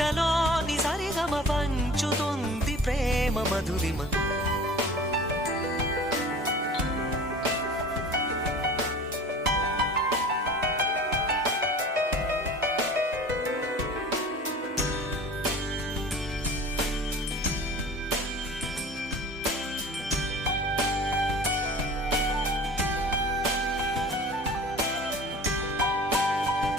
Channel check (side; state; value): both; normal; correlation 0.41